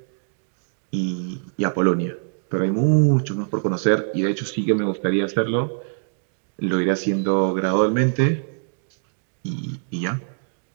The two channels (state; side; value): silent; left; 63 dB below the other